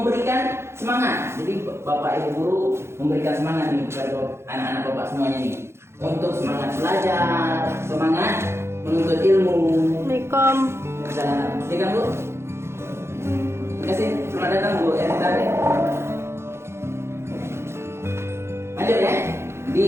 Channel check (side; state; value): left; late; 0.12 ms